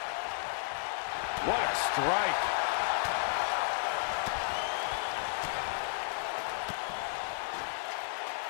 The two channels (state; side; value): silent; right; digital silence